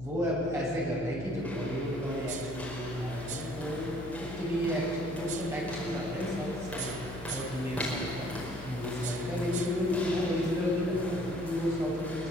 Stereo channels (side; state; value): left; noise; hum, 13 dB below the sound